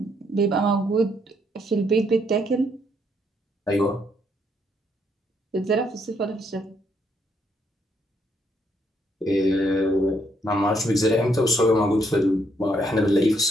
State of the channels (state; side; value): normal; both; correlation 0.73